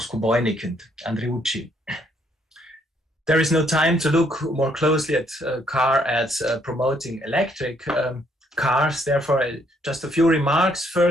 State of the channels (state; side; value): normal; both; correlation 0.69